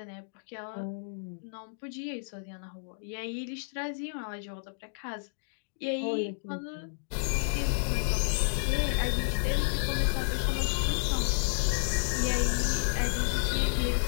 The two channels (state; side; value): silent; right; digital silence